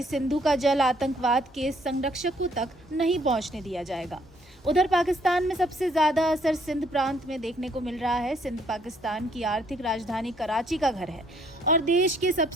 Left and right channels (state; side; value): normal; both; correlation 0.66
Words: सिंधु का जल आतंकवाद के संरक्षकों तक नहीं पहुंचने दिया जाएगा। उधर पाकिस्तान में सबसे ज्यादा असर सिंध प्रांत में देखने को मिल रहा है। सिंध पाकिस्तान की आर्थिक राजधानी कराची का घर है और देश के